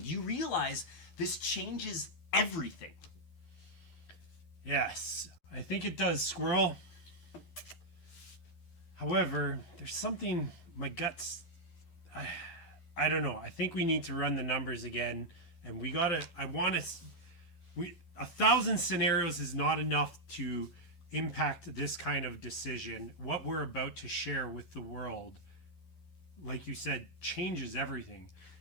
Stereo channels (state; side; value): late; right; 12 ms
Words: Do you realize this changes everything? Yes, I think it does, Squirrel. However, there's something my guts. I don't know. I think we need to run the numbers again, and we gotta. I want to. 1,000 scenarios is not enough to impact this kind of decision. What we're about to share with the world, like you said, changes everything.